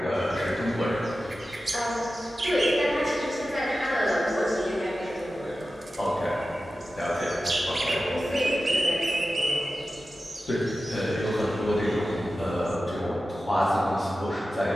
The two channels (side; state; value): both; normal; correlation 0.94